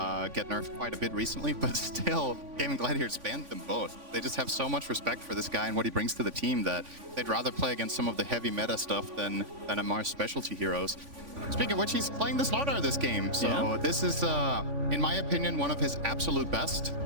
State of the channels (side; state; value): left; late; 3.5 ms